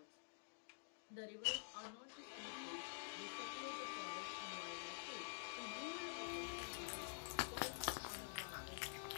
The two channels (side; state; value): right; silent; digital silence